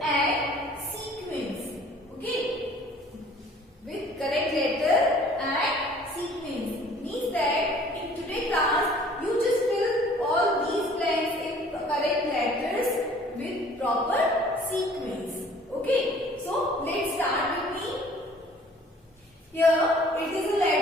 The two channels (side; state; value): both; normal; correlation 0.53